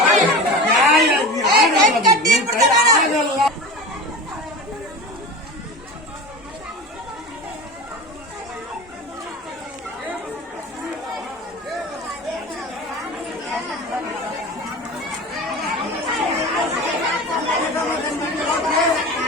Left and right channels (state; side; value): normal; both; correlation 0.31